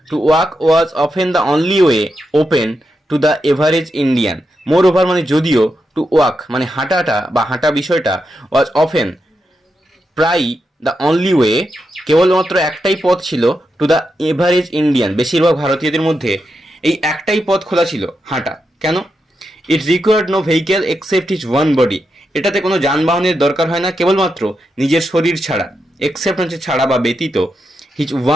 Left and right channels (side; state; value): both; normal; correlation 0.86